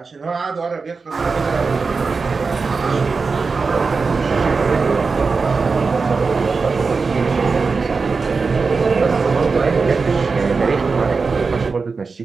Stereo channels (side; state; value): left; quieter; 4.6 dB